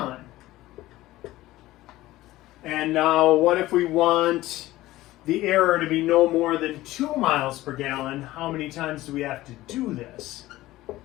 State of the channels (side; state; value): right; quieter; 16.8 dB